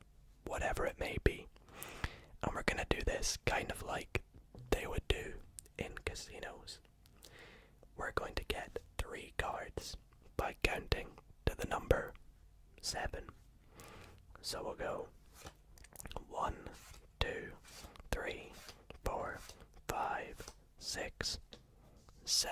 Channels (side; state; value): both; identical; correlation 1.00